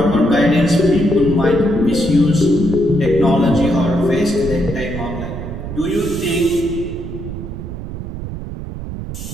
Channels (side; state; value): right; noise; rumble, 8 dB below the sound